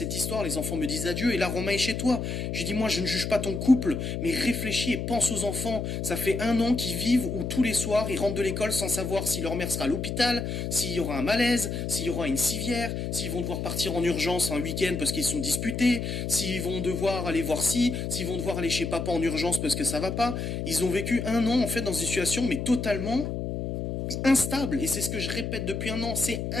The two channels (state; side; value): noise; left; hum, 3 dB below the sound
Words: histoire? Les enfants me disent adieu, et là, Romain est chez toi. Je lui ai dit, moi, je ne juge pas ton couple, mais réfléchis et pense aux enfants. Ça fait 1 an qu'ils vivent où tous les soirs, ils rentrent de l'école sans savoir si leur mère sera à l'hôpital, s'il y aura un malaise, s'il y aura une civière, s'ils vont devoir partir en urgence un week-end parce qu'ils sont disputés, s'ils vont devoir aller voir s'ils vont devoir aller chez papa en urgence parce que ça va pas. Ils ont vécu 1 an, en fait, dans une situation, mais totalement instable. Et c'est ce que je répète depuis 1 an, c'est